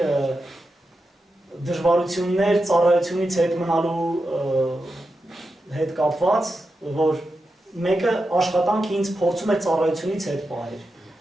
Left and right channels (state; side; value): normal; both; correlation 0.89